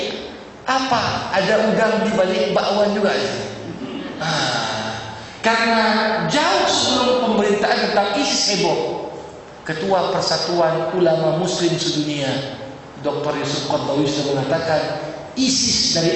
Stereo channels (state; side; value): identical; both; correlation 1.00